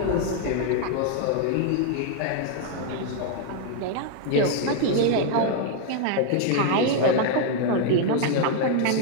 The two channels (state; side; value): different; both; correlation 0.00